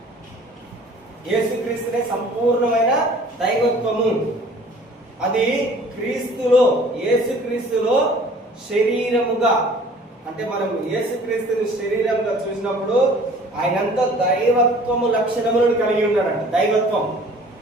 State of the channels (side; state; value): both; normal; correlation 0.51